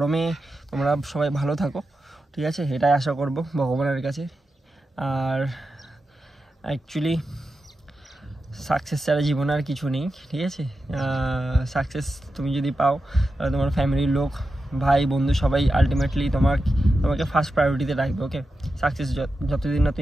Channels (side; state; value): both; normal; correlation 0.90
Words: তোমরা সবাই ভালো থাকো। ঠিক আছে, এটাই আশা করব ভগবানের কাছে। আর অ্যাকচুয়ালি সাকসেস ছাড়া জীবনে আর কিছু নেই। ঠিক আছে, সাকসেস তুমি যদি পাও, তাহলে তোমার ফ্যামিলির লোক, ভাই বন্ধু সবাই আলটিমেটলি তোমাকে ফার্স্ট প্রায়োরিটিতে রাখবে। ওকে, সাকসেস যতদিন না